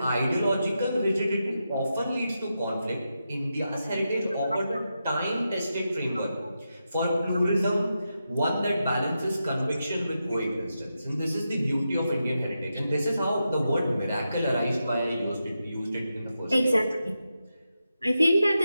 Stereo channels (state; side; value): inverted; both; correlation -0.88